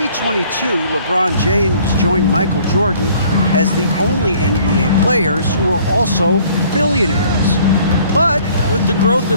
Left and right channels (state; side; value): inverted; both; correlation -0.57